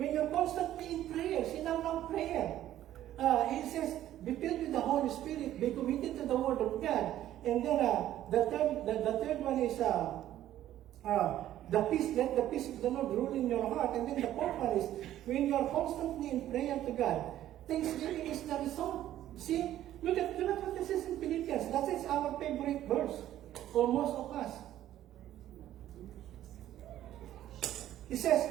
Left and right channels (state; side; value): quieter; left; 12.7 dB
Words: when you're constantly in prayer, sinang prayer. He says, be filled with the Holy Spirit, be committed to the Word of God. And then the third one is the peace, let the peace of the Lord rule in your heart. And then the fourth one is, when you're constantly in prayer to God, thanksgiving is the result. See, look at what this is in Philippians. That is our favorite verse for most of us. He says,